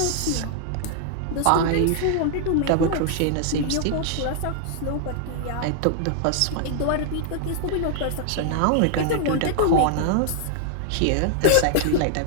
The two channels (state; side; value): different; both; correlation 0.00